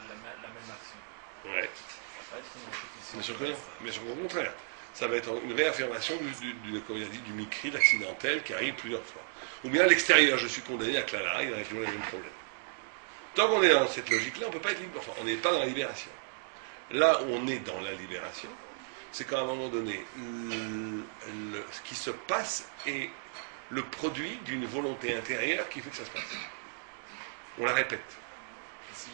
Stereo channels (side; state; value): left; silent; digital silence